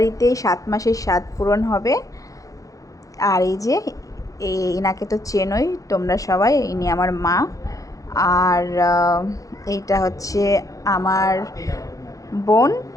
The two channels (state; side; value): late; right; 0.16 ms